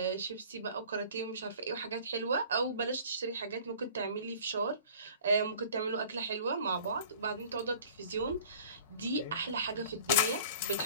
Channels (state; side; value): inverted; both; correlation -0.47